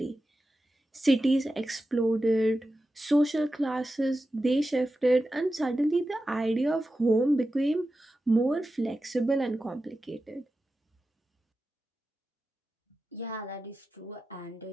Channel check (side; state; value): both; normal; correlation 0.92